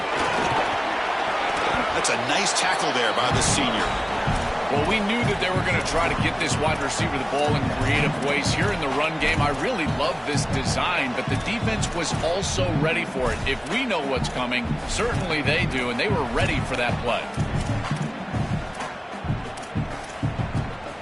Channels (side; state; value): both; identical; correlation 1.00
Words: That's a nice tackle there by the senior. Well, we knew that they were going to try to get this wide receiver the ball in creative ways here in the run game. I really love this design, but the defense was also ready for it. If we know what's coming, certainly they do, and they were ready for that play.